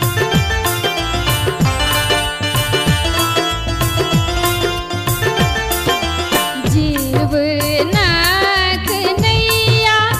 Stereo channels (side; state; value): both; identical; correlation 1.00